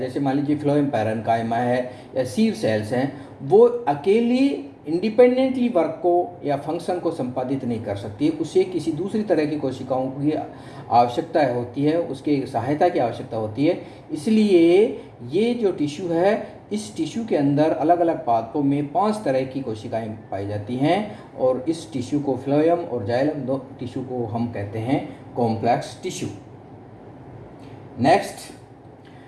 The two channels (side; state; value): both; identical; correlation 1.00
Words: मान लीजिए फ्लोएम पैरेन्काइमा है या सीव सेल्स हैं, वो अकेली इंडिपेंडेंटली वर्क को या फंक्शन को संपादित नहीं कर सकती, उसे किसी दूसरी तरह की कोशिकाओं की आवश्यकता होती है, उसके सहायता की आवश्यकता होती है। इसलिए ये जो टिश्यू है, इस टिश्यू के अंदर अलग अलग पादपों में 5 तरह की कोशिकाएं पाई जाती हैं, और इस टिश्यू को फ्लोएम और जाइलम 2 टिश्यू को हम कहते हैं कॉम्प्लेक्स टिश्यू।